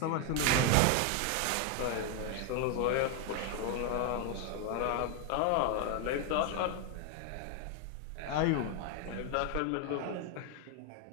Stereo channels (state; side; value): different; both; correlation 0.01